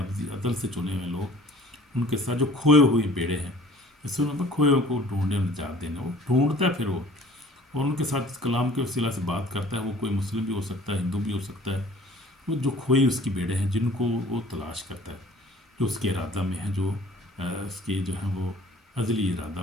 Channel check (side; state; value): both; normal; correlation 0.50